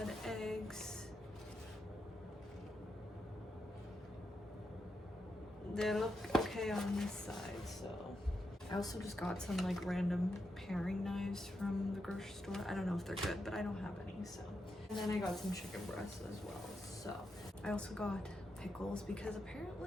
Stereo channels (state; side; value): normal; both; correlation 0.84